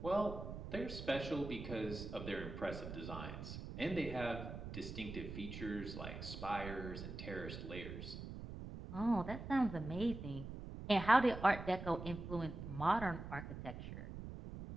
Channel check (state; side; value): noise; right; rumble, 8 dB below the sound